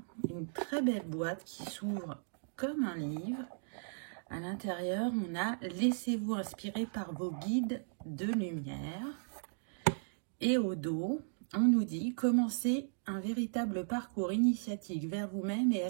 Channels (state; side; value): silent; left; digital silence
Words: Une très belle boîte qui s'ouvre comme un livre. À l'intérieur, on a « Laissez-vous inspirer par vos guides de lumière ». Et au dos, on nous dit « Commencez un véritable parcours initiatique vers vous-même et